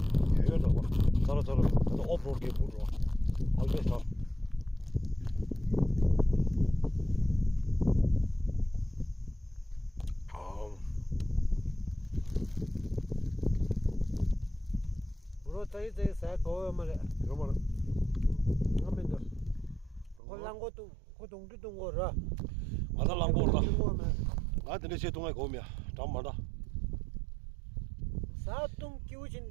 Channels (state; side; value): drops out; left; at 20.2 s